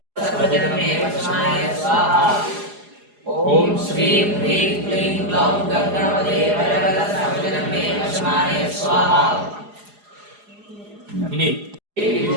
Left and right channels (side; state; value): left; late; 4.8 ms